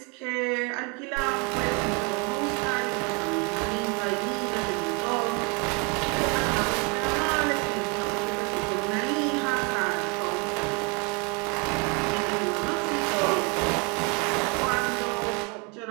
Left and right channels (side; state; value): left; quieter; 32.5 dB